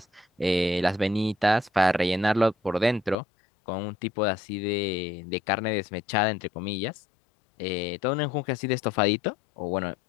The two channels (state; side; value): drops out; right; at 3.2 s